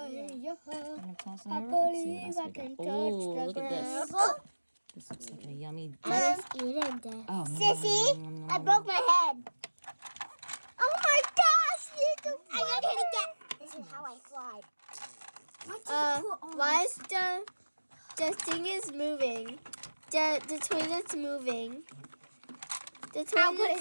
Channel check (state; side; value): inverted; both; correlation -1.00